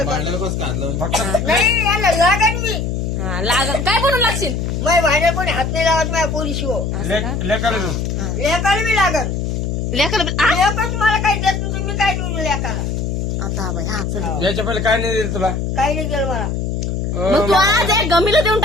भांड्याला कसं काढलं नाही. याला लागन मी हा लागल काय बनवून लागशील. माझ्या भांड्या कोणी हात नाही लावत माझ्या पोरी शिव लेकाला लेकाला मी लागन. लेकर लेकच मला काही देत नाही तुम्ही काय देऊ लेकाला. आता बाई हा चल. याच्या पहिले काय नाही दिलं तुला काही नाही केलं मला. मग तू आज एक गमीला देऊन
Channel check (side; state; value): left; noise; hum, 2 dB below the sound